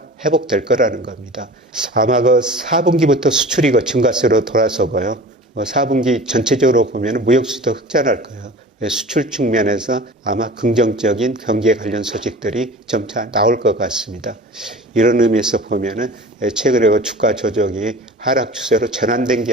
회복될 거라는 겁니다. 아마 4분기부터 수출이 증가세로 돌아서고요. 4분기 전체적으로 보면 무역수도 흑자날 거예요. 수출 측면에서 아마 긍정적인 경기에 관련 소식들이 점차 나올 것 같습니다. 이런 의미에서 보면은 최근에 주가 조정이 하락 추세로 전환된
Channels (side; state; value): both; normal; correlation 0.39